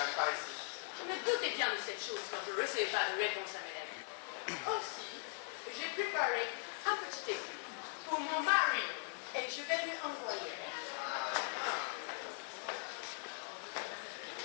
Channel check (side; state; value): right; silent; 51 dB below the other